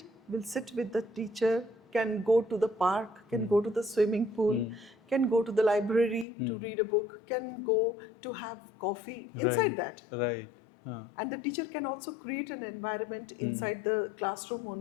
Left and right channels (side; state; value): right; drops out; at 6.2 s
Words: will sit with the teacher, can go to the park, can go to the swimming pool, can go to the library to read a book, can go to have coffee inside that. Right. And the teacher can also create an environment inside the classroom